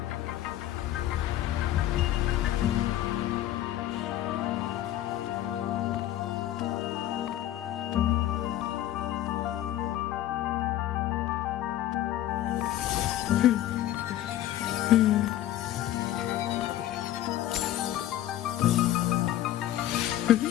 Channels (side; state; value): right; quieter; 13.2 dB